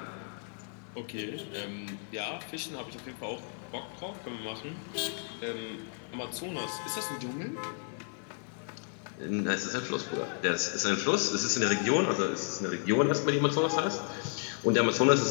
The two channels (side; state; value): right; silent; 56 dB below the other